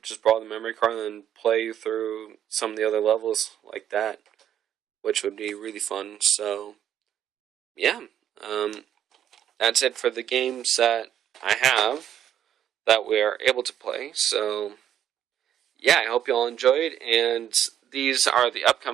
just borrow the memory card and then play through some of the other levels like that, which would be really fun. So, yeah, that's it for the games that I have that we are able to play. So, yeah, I hope you all enjoyed, and these are the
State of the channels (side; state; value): left; quieter; 10.2 dB